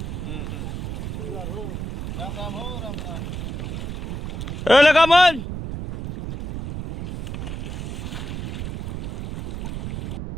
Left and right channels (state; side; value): noise; right; rumble, 5 dB below the sound